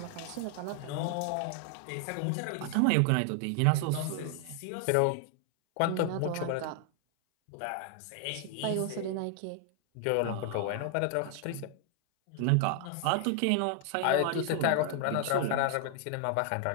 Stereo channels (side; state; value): both; different; correlation 0.00